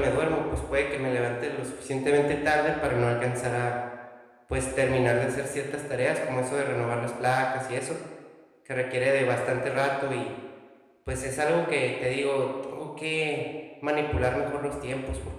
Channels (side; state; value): both; identical; correlation 1.00